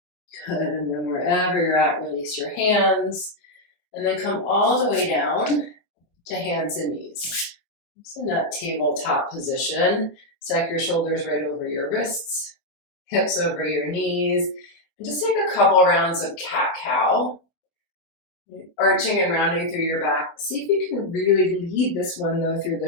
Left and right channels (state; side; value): late; right; 24 ms